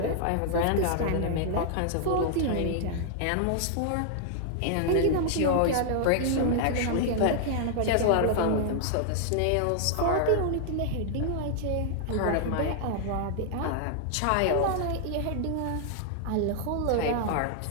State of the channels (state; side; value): different; both; correlation 0.00